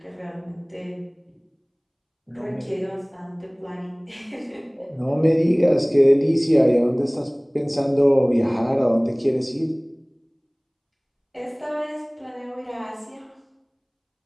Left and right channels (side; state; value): both; identical; correlation 1.00